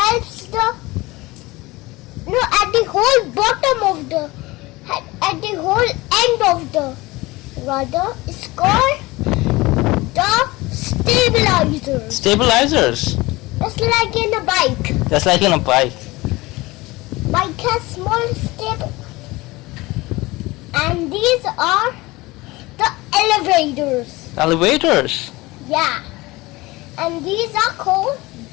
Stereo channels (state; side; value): quieter; right; 21.2 dB